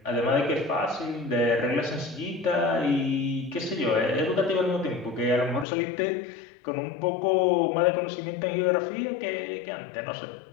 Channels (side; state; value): right; drops out; at 5.7 s